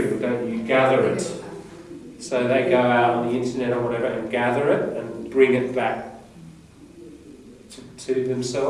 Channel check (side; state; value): both; identical; correlation 1.00